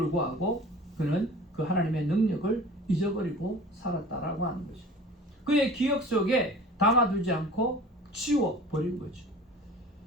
그는 그 하나님의 능력을 잊어버리고 살았다라고 하는 거죠. 그의 기억 속에 담아두지 않고 지워버린 거죠.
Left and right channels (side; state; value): both; normal; correlation 0.42